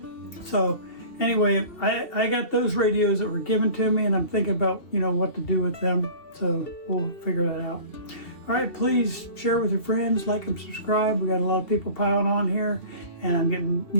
So anyway, I got those radios that were given to me, and I'm thinking about, you know, what to do with them. So we'll figure that out. All right, please share with your friends, like and subscribe. We got a lot of people piling on here, and I'm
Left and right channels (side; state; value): right; late; 2.7 ms